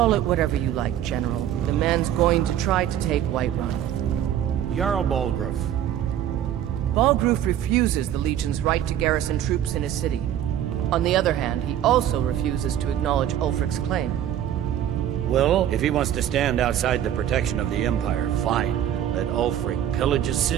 it whatever you like, General. The man's going to try to take Whiterun. Jarl Balgruuf. Balgruuf refuses the Legion's right to garrison troops in his city. On the other hand, he also refuses to acknowledge Ulfric's claim. Well, if he wants to stand outside the protection of the Empire, fine. Let Ulfric pillage his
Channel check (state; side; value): quieter; left; 10.9 dB